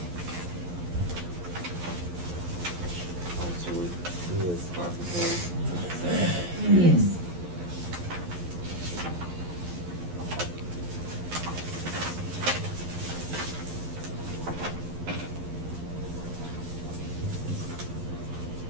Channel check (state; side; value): late; left; 11 ms